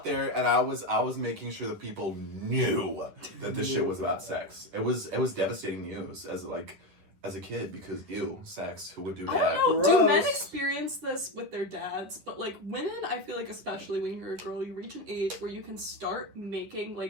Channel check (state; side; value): late; left; 10 ms